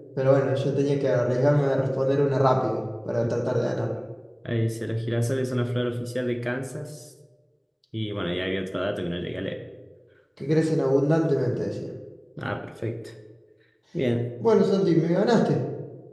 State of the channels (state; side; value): identical; both; correlation 1.00